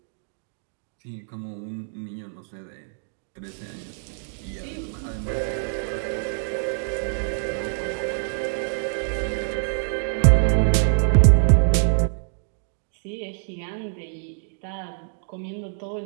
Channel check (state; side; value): silent; left; digital silence